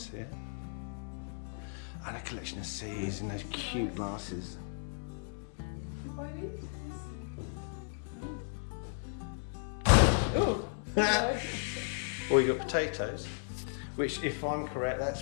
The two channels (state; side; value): silent; right; digital silence